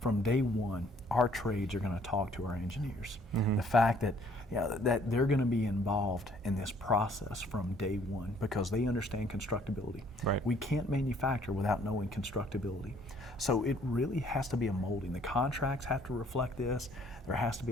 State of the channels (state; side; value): normal; both; correlation 0.61